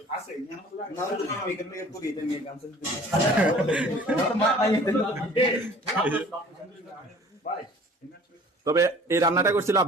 তবে এই রান্নাটা করছিল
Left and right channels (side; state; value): both; normal; correlation 0.49